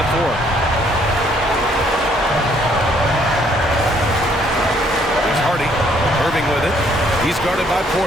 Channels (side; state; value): both; normal; correlation 0.66